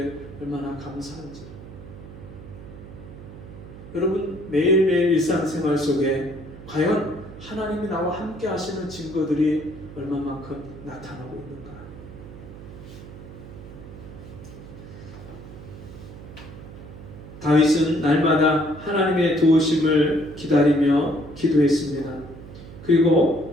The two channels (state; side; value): noise; right; hum, 15 dB below the sound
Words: 얼마나 감사한지. 여러분, 매일매일 일상생활 속에 과연 하나님이 나와 함께 하시는 증거들이 얼마만큼 나타나고 있는가? 다윗은 날마다 하나님의 도우심을 기다리며 기도했습니다.